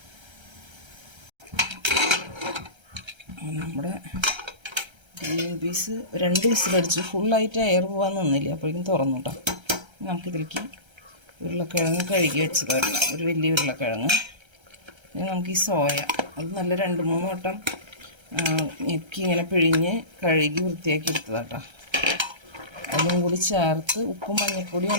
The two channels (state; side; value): late; left; 1.3 ms